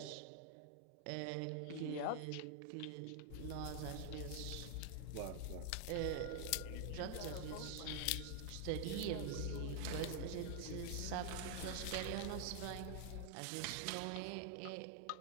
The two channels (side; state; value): both; different; correlation 0.00